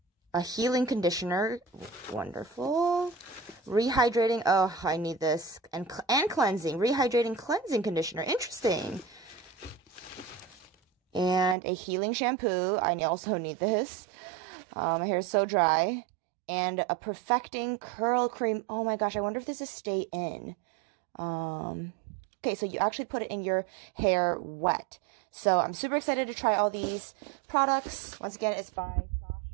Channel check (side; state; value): left; drops out; at 11.6 s